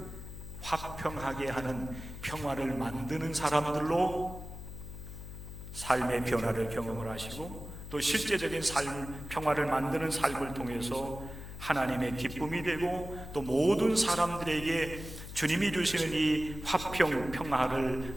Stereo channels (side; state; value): left; noise; hum, 11 dB below the sound